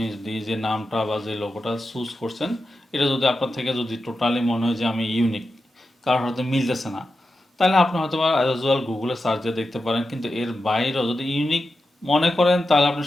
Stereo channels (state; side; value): normal; both; correlation 0.90